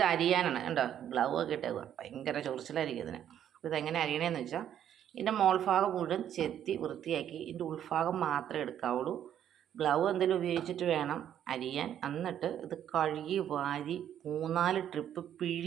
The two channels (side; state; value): left; quieter; 10.2 dB